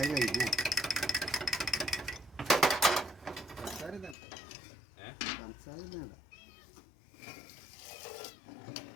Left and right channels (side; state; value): right; drops out; at 4.2 s